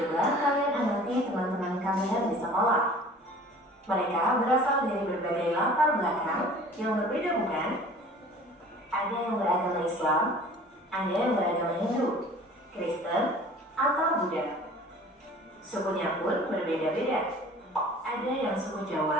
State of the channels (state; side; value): normal; both; correlation 0.46